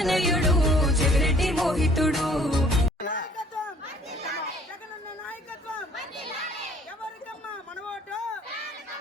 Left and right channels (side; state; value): both; normal; correlation 0.56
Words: చెవిరెడ్డి మోహితుడు. జగనన్న నాయకత్వం ఎవరికమ్మా మన ఓటు,